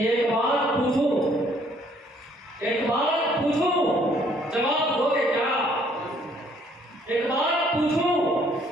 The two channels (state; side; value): normal; both; correlation 0.63